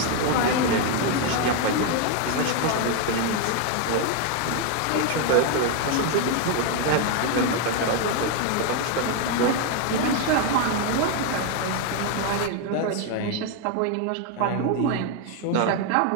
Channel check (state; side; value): different; both; correlation 0.01